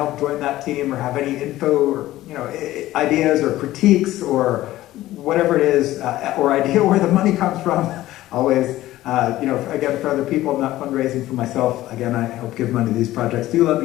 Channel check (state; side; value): quieter; right; 15.5 dB